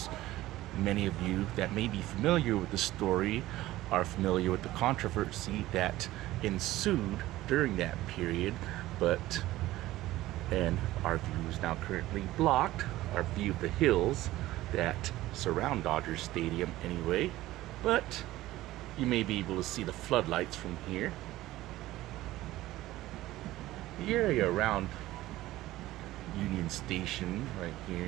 many of you that may be familiar with the story are familiar with the controversy that ensued during that period, and our view is now currently blocked, our view of the hills that surround Dodger Stadium anyway, but you may be able to see the floodlights from here. The area around Union Station right here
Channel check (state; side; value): quieter; left; 16.3 dB